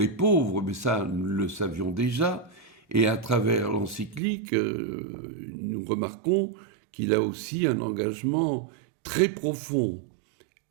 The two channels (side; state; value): left; drops out; at 4.2 s